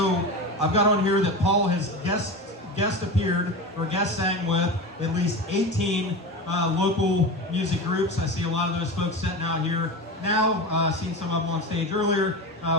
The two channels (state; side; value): normal; both; correlation 0.26